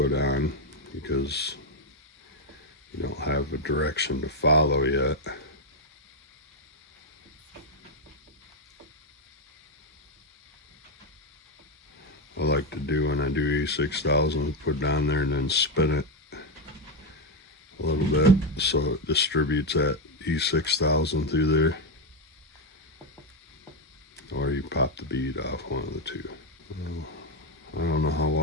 on because you don't have a direction to follow yet. I like to do when I do E6000, put down there and then spin it a little bit so it distributes that E6000 through there. Or you pop the bead off, one of the two. I don't know how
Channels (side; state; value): both; normal; correlation 0.06